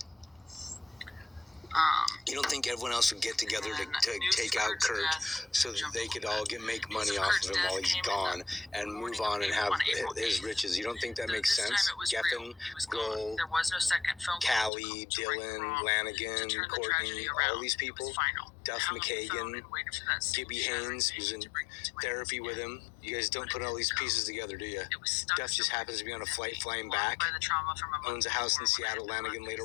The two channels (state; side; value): drops out; right; at 14.7 s